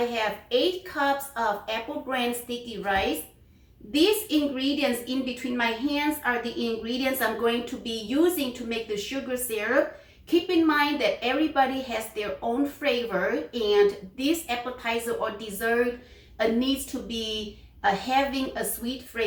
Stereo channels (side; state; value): both; identical; correlation 1.00